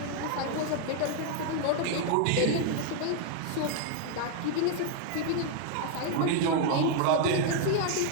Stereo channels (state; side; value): different; both; correlation 0.00